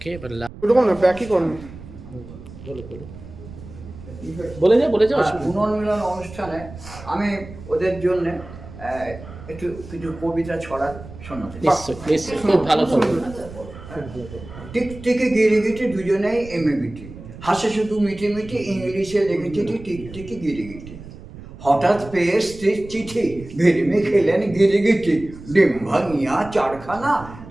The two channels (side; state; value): right; noise; rumble, 15 dB below the sound